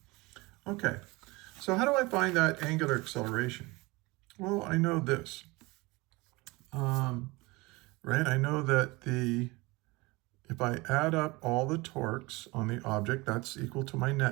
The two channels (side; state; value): left; quieter; 23.6 dB